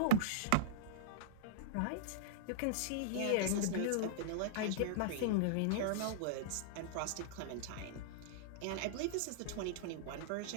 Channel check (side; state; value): both; different; correlation -0.03